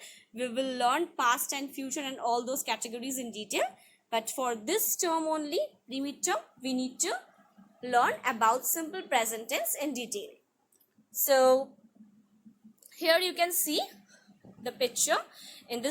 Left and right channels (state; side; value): identical; both; correlation 1.00